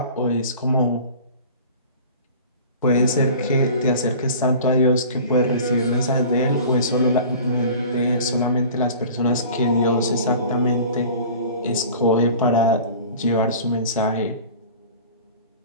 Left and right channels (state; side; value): inverted; both; correlation -0.42